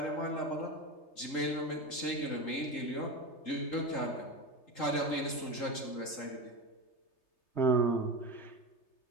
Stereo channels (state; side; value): late; right; 3.8 ms